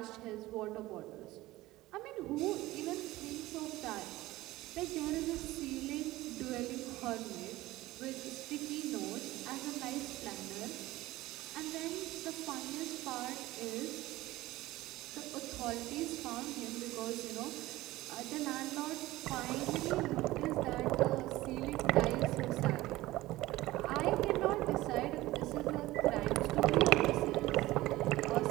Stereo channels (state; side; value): quieter; left; 17.8 dB